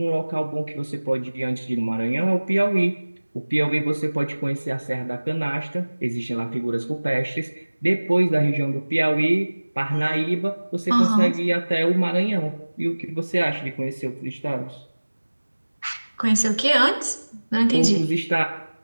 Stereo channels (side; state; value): both; inverted; correlation -1.00